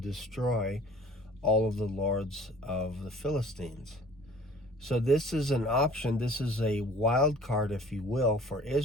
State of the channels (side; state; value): both; normal; correlation 0.50